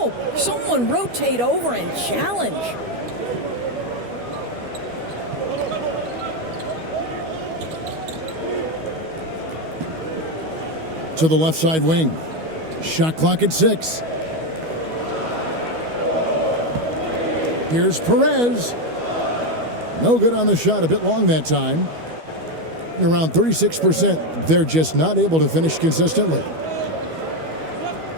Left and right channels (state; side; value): late; left; 12 ms